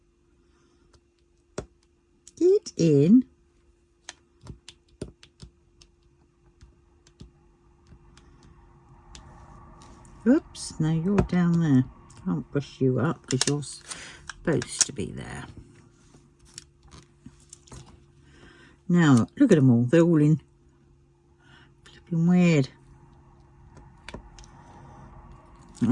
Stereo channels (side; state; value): both; identical; correlation 1.00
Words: Get in. Oops, no, you're down there. Can't push you up because you're supposed to be there. Now, look at them all. They're all in flipping weird.